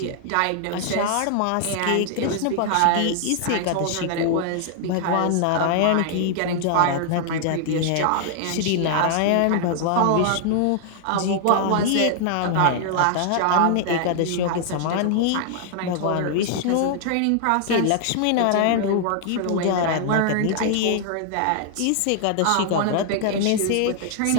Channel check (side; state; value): both; different; correlation -0.01